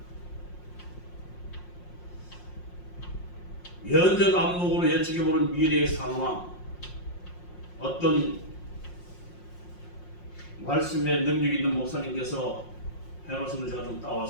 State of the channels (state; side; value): late; right; 5.6 ms